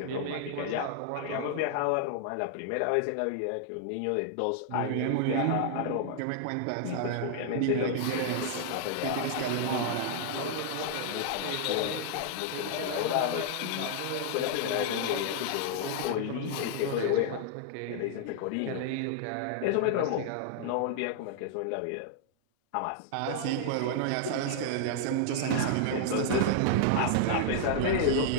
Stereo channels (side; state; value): both; different; correlation -0.01